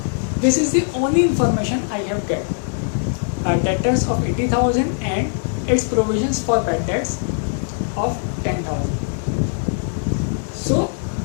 This is the only information I have get. Debtors of 80,000 and its provisions for bad debts of 10,000. So,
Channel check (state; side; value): silent; right; digital silence